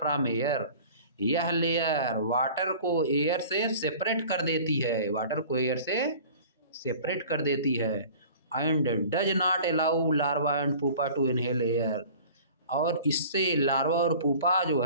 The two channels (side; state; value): both; inverted; correlation -0.44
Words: air. यह लेयर वाटर को एयर से सेपरेट कर देती है, वाटर को एयर से सेपरेट कर देती है। And does not allow larva and pupa to inhale air. और इससे लार्वा और पुपा जो